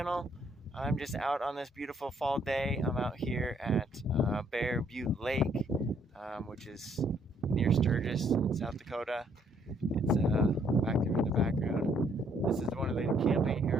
I'm just out on this beautiful fall day. I'm out here at Bear Butte Lake, which is near Sturgis, South Dakota. It's back there in the background. This is one of the camping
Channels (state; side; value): normal; both; correlation 0.67